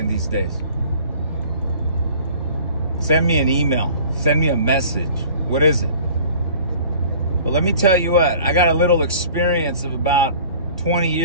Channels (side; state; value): both; inverted; correlation -0.48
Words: these days? Send me an email. Send me a message. What is it? Well, let me tell you what. I got a little experience of about 20